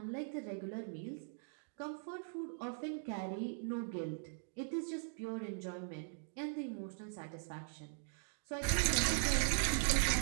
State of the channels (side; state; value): left; silent; digital silence